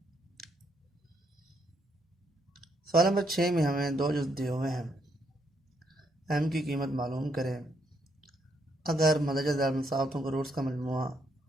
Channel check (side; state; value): both; normal; correlation 0.75